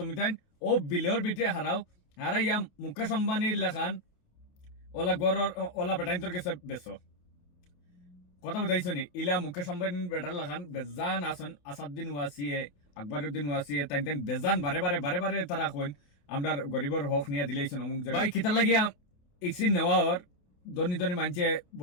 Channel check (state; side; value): late; right; 28 ms